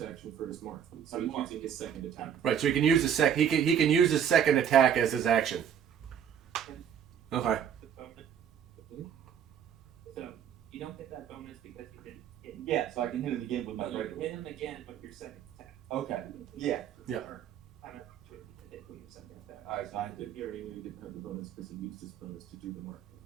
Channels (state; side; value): quieter; left; 8.6 dB